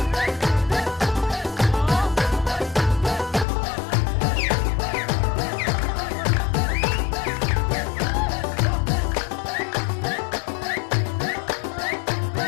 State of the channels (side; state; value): right; drops out; at 3.5 s